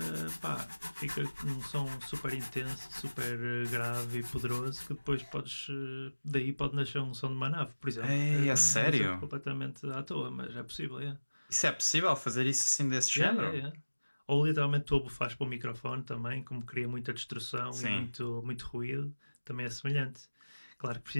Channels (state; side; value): inverted; both; correlation -1.00